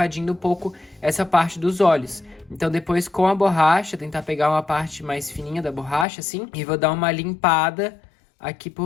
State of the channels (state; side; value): drops out; right; at 6.1 s